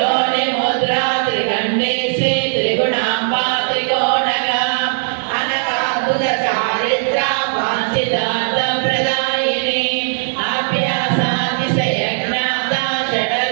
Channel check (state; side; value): silent; left; digital silence